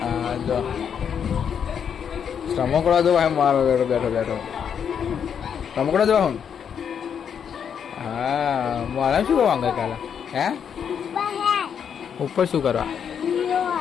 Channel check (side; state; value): right; quieter; 7.7 dB